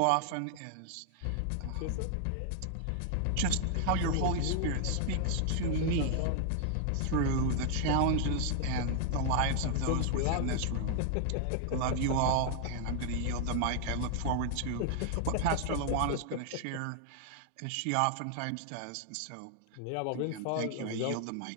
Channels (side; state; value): both; different; correlation 0.00